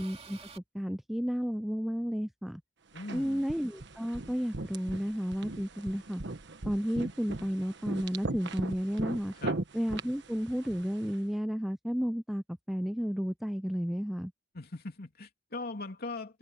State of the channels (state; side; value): normal; both; correlation 0.91